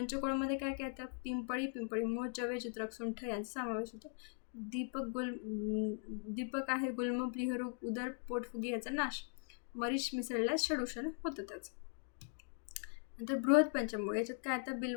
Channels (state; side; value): silent; right; 51 dB below the other